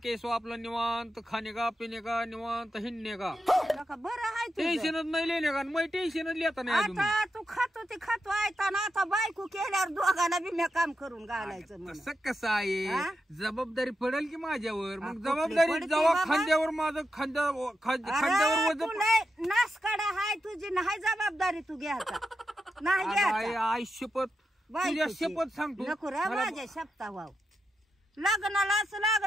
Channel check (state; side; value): normal; both; correlation 0.87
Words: आपलं निवांत, खाणे का पिणे का निवांत, हिंडणे का. नका बरं आहे तुझं. टेन्शनच नाही लिहिले का. मग टेन्शनच लिहिता नाही अजून. आता तू खातो ते खातो ऐकताना आता बायको केल्यावर दोघांना बी मी काम करून घालायचं म्हणून. कसं कसं आहे, हा? जबाबदारी पडेल की माझ्यावर. हा, मग कुठली जबाबदारी पडते जेव्हा बाबा? खांद्यावर माझं खांद्यावर अरे, वजन तू लय नासकाडा हाय तुझी नाही जबाबदारी तू घ्यायचा नाही घ्यायचा. आई शपथ, तुझ्या बायकोची. शपथ सांगतो. नको रे मला- माझ्या शपथा वाव. लग्नालाच